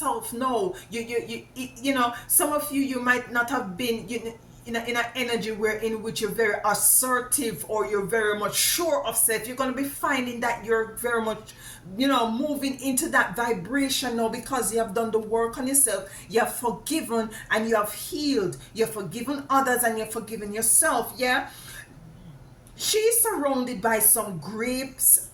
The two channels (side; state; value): both; identical; correlation 1.00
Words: No, you know, some of you might not have been in an energy in which you're very assertive, or you're very much sure of self. You're going to be finding that you're very much, you know, moving into that vibration now, because you have done the work on yourself. You have forgiven and you have healed. You have forgiven others and you have forgiven yourself. Yeah. She's surrounded by some grapes,